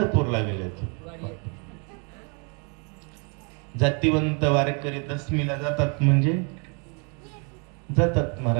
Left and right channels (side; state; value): left; quieter; 35.9 dB